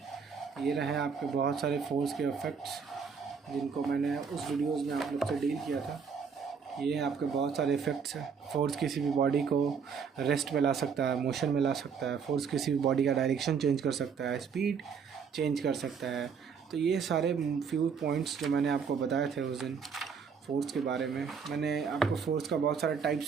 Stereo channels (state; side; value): quieter; left; 6.3 dB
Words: ये रहे आपके बहुत सारे फोर्स के इफ़ेक्ट्स जिनको मैंने उस वीडियोस में आप लोग से डील किया था। ये आपके बहुत सारे इफ़ेक्ट्स हैं। फोर्स किसी भी बॉडी को रेस्ट में ला सकता है, मोशन में ला सकता है। फोर्स किसी भी बॉडी का डायरेक्शन चेंज कर सकता है, स्पीड चेंज कर सकता है। तो ये सारे फ्यू पॉइंट्स जो मैंने आपको बताए थे उस दिन फोर्स के बारे में। मैंने आपको फोर्स का बहुत सारे